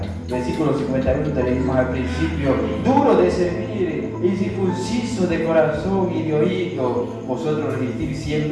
Versículo 51 tenemos al principio, duro de servir, incircunciso de corazón y de oído, vosotros resistir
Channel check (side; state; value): both; identical; correlation 1.00